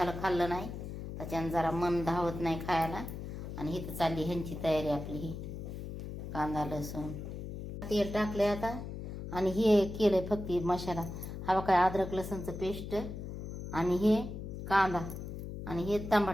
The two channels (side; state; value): left; noise; hum, 8 dB below the sound